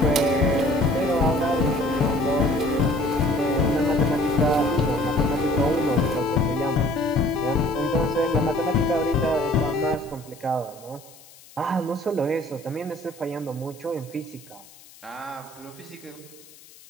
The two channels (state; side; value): noise; left; hiss, 23 dB below the sound